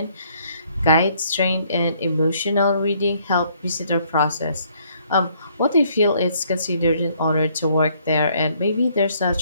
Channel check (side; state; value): both; inverted; correlation -0.66